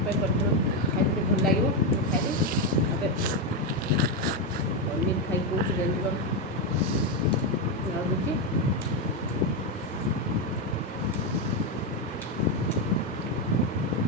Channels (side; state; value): both; normal; correlation 0.07